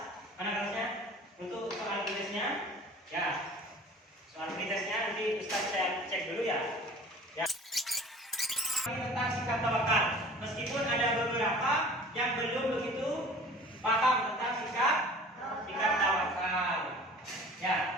Mana kertasnya? Untuk soal pretestnya. Ya. Soal pretestnya nanti Ustadz saya cek dulu ya. Tentang sikap tawakal, meskipun ada beberapa yang belum begitu paham tentang sikap tawakal.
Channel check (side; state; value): both; normal; correlation 0.44